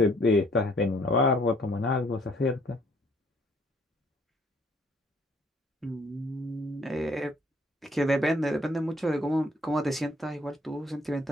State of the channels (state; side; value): normal; both; correlation 0.62